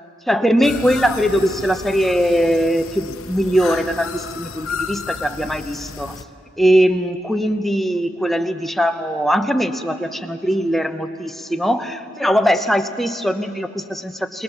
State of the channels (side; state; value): both; normal; correlation 0.88